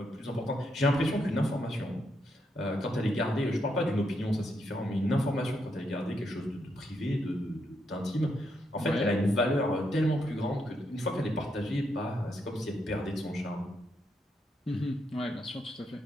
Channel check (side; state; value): both; normal; correlation 0.79